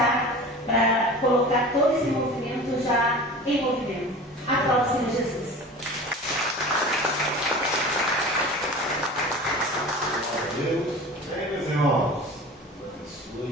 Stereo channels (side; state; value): both; normal; correlation 0.37